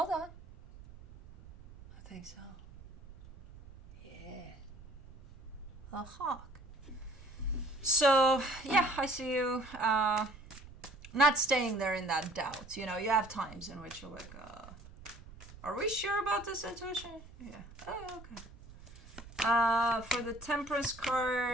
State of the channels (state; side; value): noise; right; rumble, 18 dB below the sound